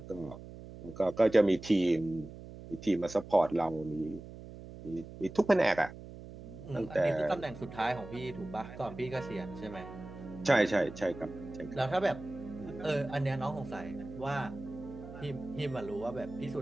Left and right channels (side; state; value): right; noise; hum, 14 dB below the sound